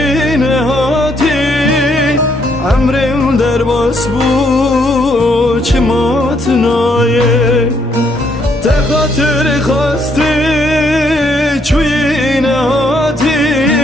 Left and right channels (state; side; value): normal; both; correlation 0.72